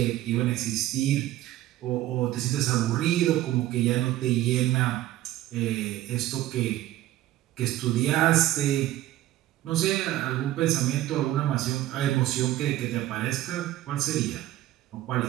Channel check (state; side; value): quieter; left; 14.7 dB